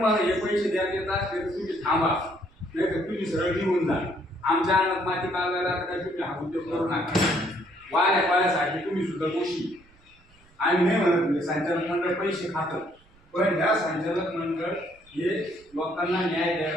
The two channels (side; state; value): right; noise; rumble, 30 dB below the sound